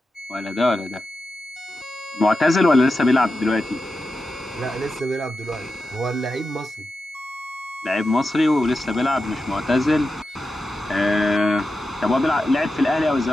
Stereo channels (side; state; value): both; normal; correlation 0.90